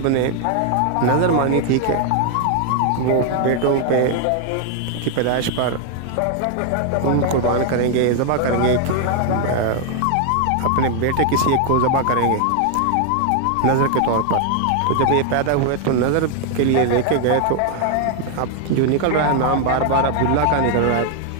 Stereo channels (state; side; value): different; both; correlation 0.00